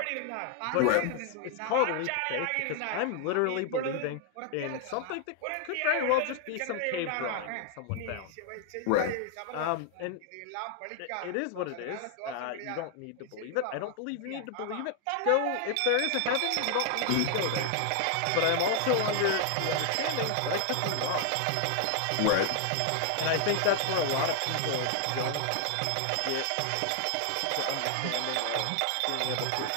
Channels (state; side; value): different; both; correlation 0.00